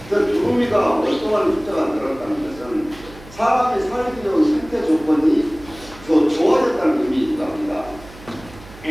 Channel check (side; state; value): right; noise; hum, 20 dB below the sound